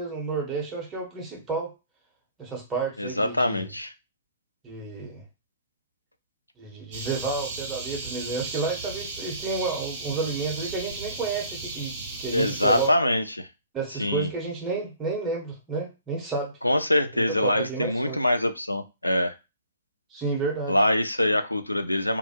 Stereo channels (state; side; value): inverted; both; correlation -0.60